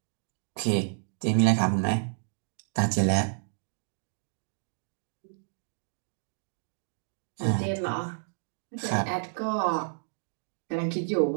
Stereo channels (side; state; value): left; silent; digital silence